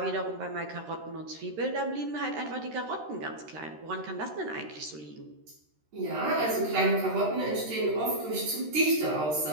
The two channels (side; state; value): left; late; 13 ms